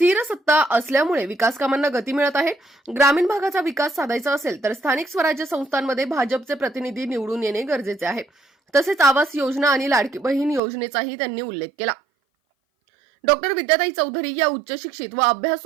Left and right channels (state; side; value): drops out; left; at 10.6 s